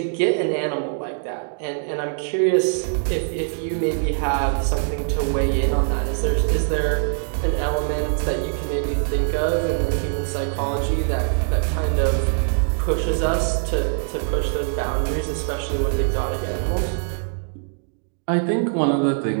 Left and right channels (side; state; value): left; silent; digital silence